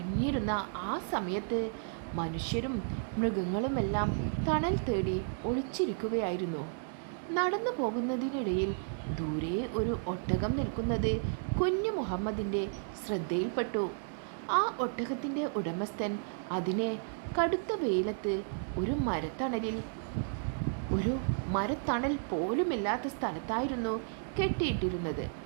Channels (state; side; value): silent; left; digital silence